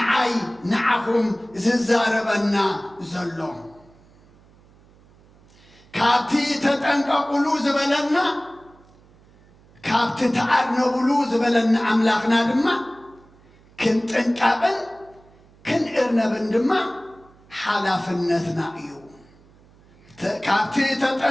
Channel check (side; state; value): right; noise; hum, 28 dB below the sound